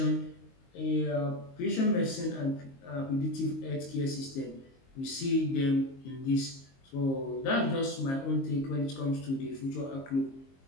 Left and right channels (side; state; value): right; late; 22 ms